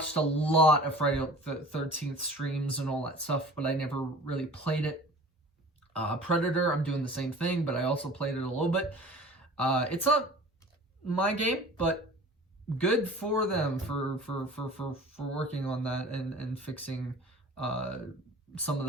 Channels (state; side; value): normal; both; correlation 0.43